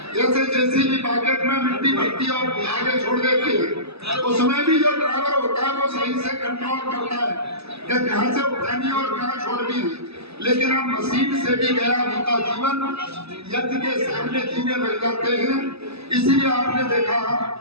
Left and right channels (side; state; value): left; late; 0.79 ms